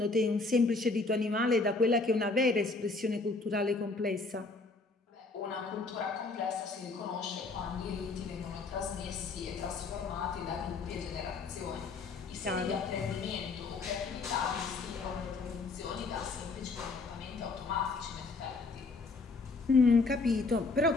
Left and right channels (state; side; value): quieter; right; 3.8 dB